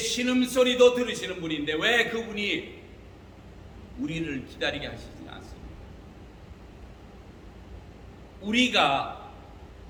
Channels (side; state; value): both; identical; correlation 1.00